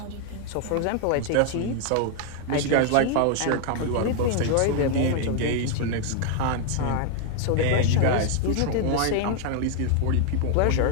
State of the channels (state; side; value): different; both; correlation 0.00